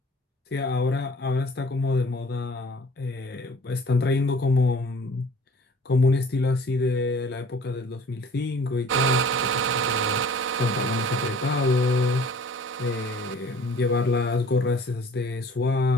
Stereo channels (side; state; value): both; normal; correlation 0.50